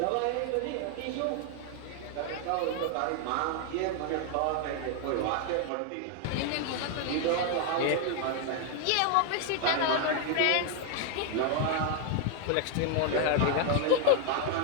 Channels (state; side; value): different; both; correlation 0.00